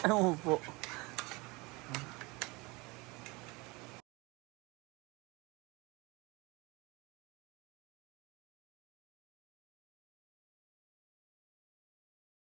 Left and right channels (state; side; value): quieter; left; 24.9 dB